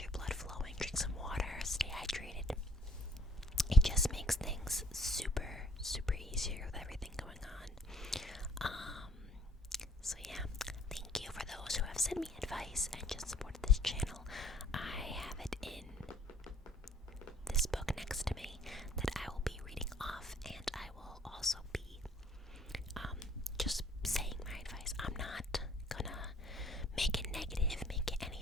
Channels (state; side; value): normal; both; correlation 0.59